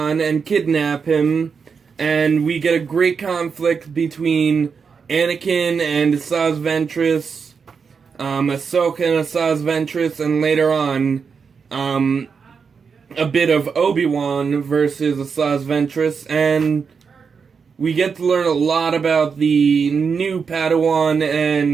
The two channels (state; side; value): quieter; left; 5.8 dB